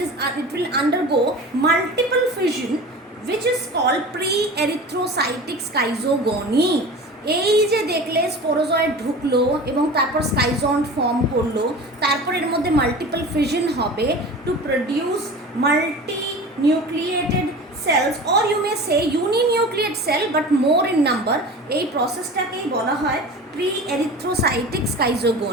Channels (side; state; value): both; normal; correlation 0.36